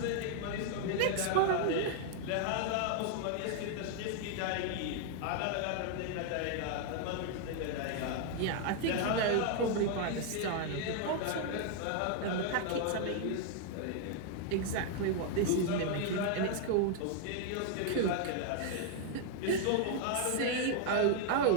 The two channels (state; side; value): different; both; correlation 0.00